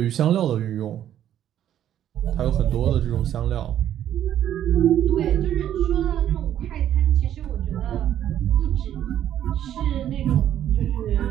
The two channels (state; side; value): quieter; left; 11.0 dB